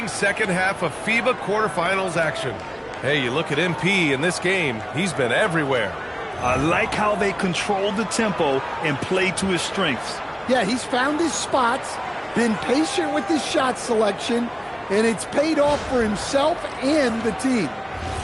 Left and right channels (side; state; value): both; identical; correlation 1.00